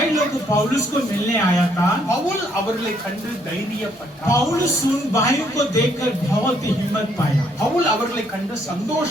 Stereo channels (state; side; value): normal; both; correlation 0.69